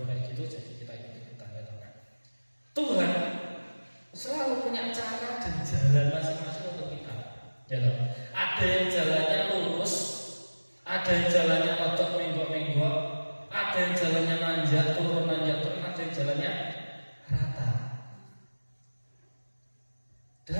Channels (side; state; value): both; inverted; correlation -1.00